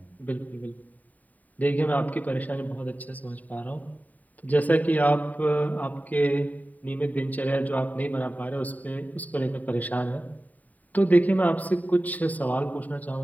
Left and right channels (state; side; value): late; right; 0.076 ms